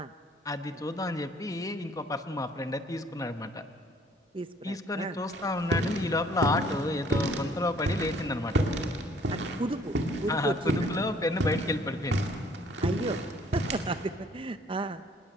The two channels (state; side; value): normal; both; correlation 0.59